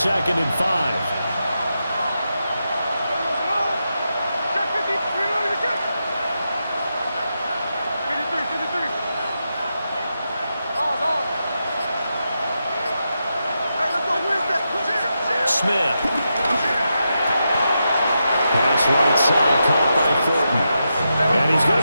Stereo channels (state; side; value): inverted; both; correlation -0.86